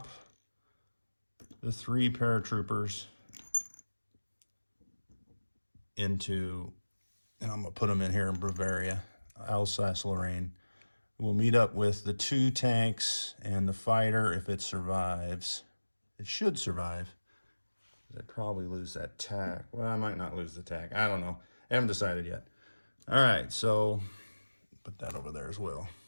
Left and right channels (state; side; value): inverted; both; correlation -1.00